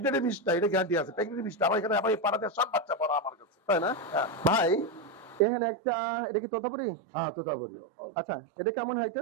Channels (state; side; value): drops out; left; at 5.4 s